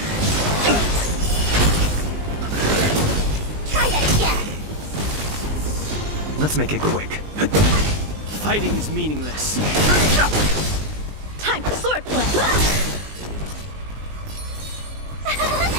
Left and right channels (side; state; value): left; late; 20 ms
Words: Try that again! Let's make it quick. Fighting is meaningless. Time for swordplay!